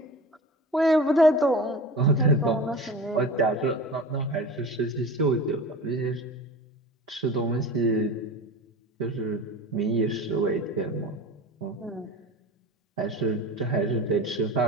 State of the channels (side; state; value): both; normal; correlation 0.34